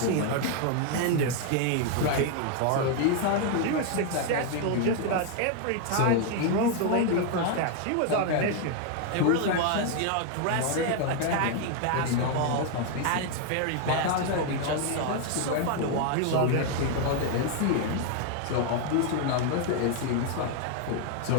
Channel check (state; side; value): different; both; correlation 0.00